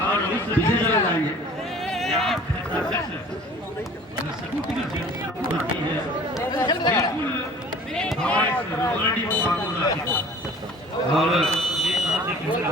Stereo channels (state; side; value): normal; both; correlation 0.48